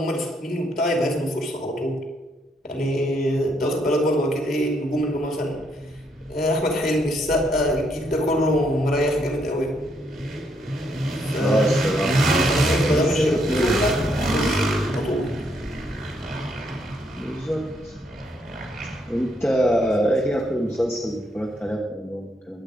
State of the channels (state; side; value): normal; both; correlation 0.74